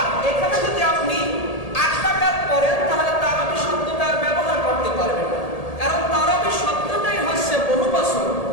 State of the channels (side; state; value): right; late; 1.8 ms